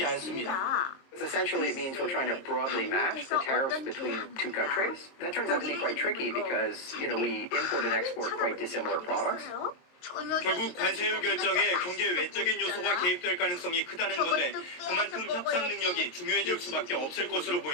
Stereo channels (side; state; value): right; late; 22 ms